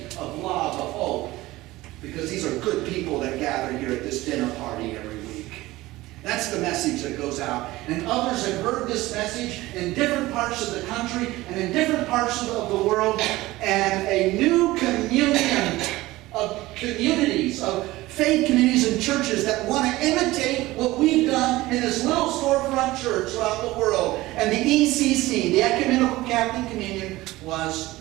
of love, of hope. Because these are good people that gather here at this dinner party every week. That's the message that goes out. And others have heard this message in different parts of the country and in different parts of the world. And a new communion of communities, of faith communities and churches that want to imitate what we've done in this little storefront church throughout the world. And the ECC, the Ecumenical Catholic Communion, was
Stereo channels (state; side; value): quieter; left; 18.4 dB